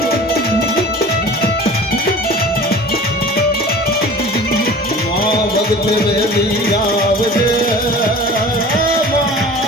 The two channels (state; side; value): normal; both; correlation 0.41